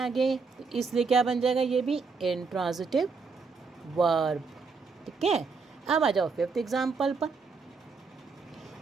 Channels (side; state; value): left; quieter; 4.8 dB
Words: तो इसलिए क्या बन जाएगा, ये भी इनट्रांजिटिव वर्ब, ठीक है। अब आ जाओ फिफ्थ एग्जाम्पल पर,